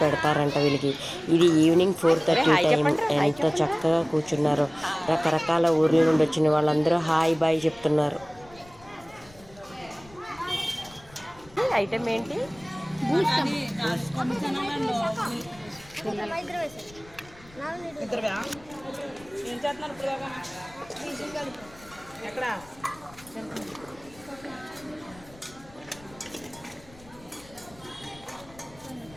పెడతారంట వీళ్ళకి. ఇది ఈవినింగ్ 4:30 టైం. ఎంత చక్కగా కూర్చున్నారో. రకరకాల ఊర్ల నుండి వచ్చిన వాళ్ళందరూ హాయ్ బాయ్ చెప్తున్నారు. ఐటమ్ ఏంటి?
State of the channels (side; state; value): left; noise; rumble, 23 dB below the sound